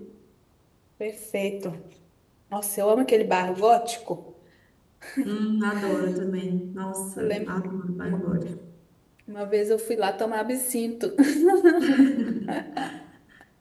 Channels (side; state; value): both; identical; correlation 1.00